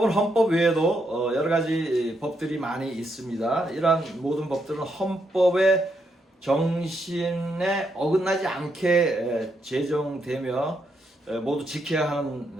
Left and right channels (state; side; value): normal; both; correlation 0.79